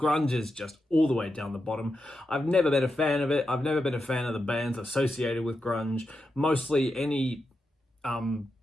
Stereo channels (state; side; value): normal; both; correlation 0.88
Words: is just all the way down the bottom. I've never been a fan of it. I've never been a fan of the bands associated with grunge. Mostly any